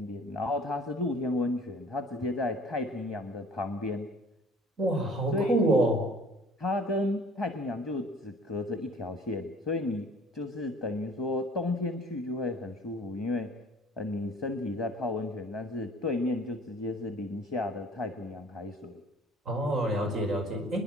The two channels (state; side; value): normal; both; correlation 0.51